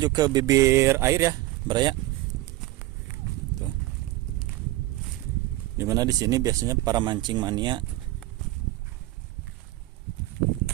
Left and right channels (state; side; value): quieter; left; 17.5 dB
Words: ke bibir air ya Baraya. Tuh. Dimana di sini biasanya para mancing mania